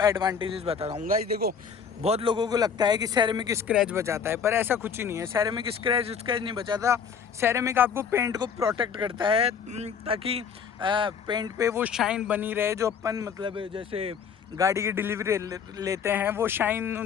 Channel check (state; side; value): quieter; right; 6.7 dB